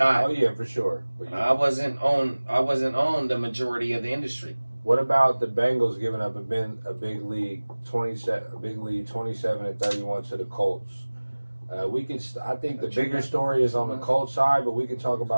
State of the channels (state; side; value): inverted; both; correlation -1.00